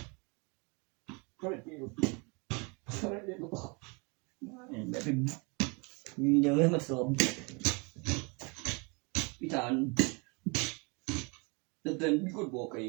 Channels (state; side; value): quieter; left; 31.0 dB